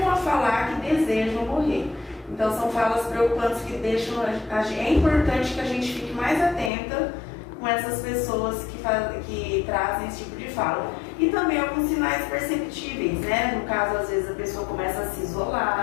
a falar que desejam morrer. Então são falas preocupantes que deixam é importante que a gente fique mais atenta com essas pessoas que trazem esse tipo de fala. E também alguns sinais perceptíveis, né? No caso, às vezes a pessoa começa a se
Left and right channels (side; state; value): right; drops out; at 6.7 s